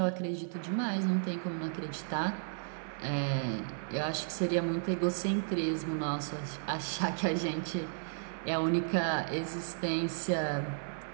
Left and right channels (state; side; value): silent; left; 55 dB below the other